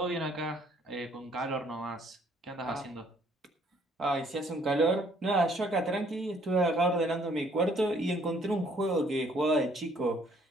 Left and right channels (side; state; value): both; normal; correlation 0.63